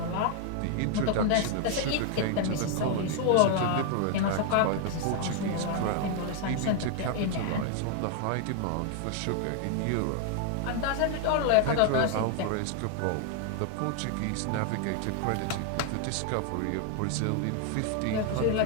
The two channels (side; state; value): both; different; correlation 0.00